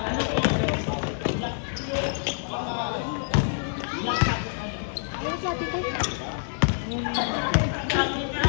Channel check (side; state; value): right; silent; digital silence